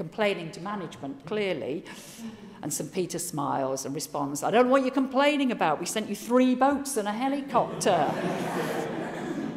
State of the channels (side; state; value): both; identical; correlation 1.00